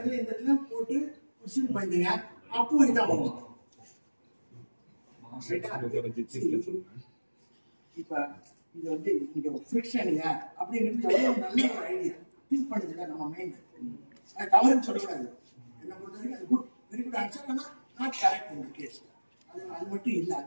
போட்டு உசில் பண்ணிங்க, அப்போ இதான் வரும். இப்ப இது வந்து இங்க ஃபிரிக்ஷன் இல்ல அப்படிங்கிறது எவ்வளவு நல்ல ஒரு ஐடியா. திங்க் பண்ணுதுல நம்ம மைண்ட். அது தவறுன்னு சொல்லக்கூடாது. என்ன பொறுத்த வரைக்கும் அது குட், வெரி குட் ஆன்சர். ஆனா நாட் கரெக்ட் இந்த கேஸ். அது மட்டும் இல்ல,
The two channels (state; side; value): inverted; both; correlation -1.00